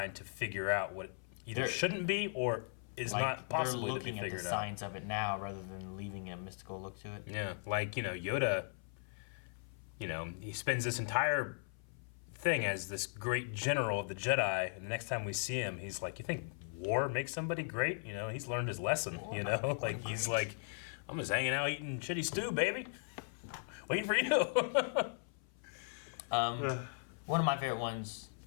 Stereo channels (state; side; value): silent; right; 52 dB below the other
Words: to figure out what either They're- shouldn't be or is Like not possibly they're to be looking at the figured out. science of it now rather than leaving a mystical look to it. Yeah, like, Yoda, he spends this entire thing as this great general of the Jedi, and the next time we see him, he's like, you think war makes somebody great? He's learned his lesson, Like, he's like, I'm just hanging out eating shitty stew, baby. Waiting for you. One of my favorite ones,